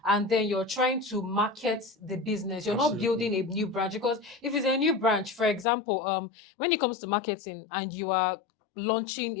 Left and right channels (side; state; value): right; drops out; at 5.7 s